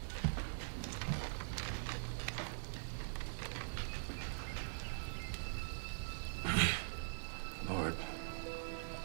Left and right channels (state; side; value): silent; left; digital silence